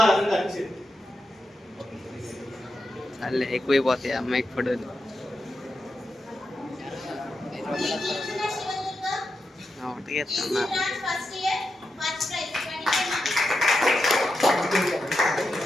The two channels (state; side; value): normal; both; correlation 0.88